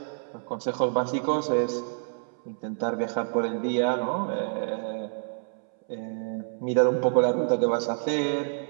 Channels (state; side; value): silent; left; 60 dB below the other